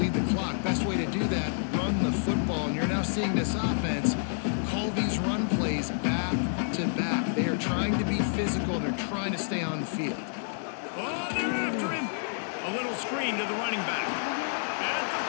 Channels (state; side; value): silent; right; digital silence